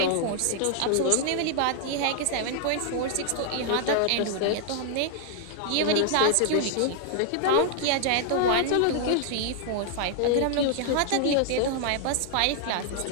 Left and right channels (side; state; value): both; different; correlation 0.00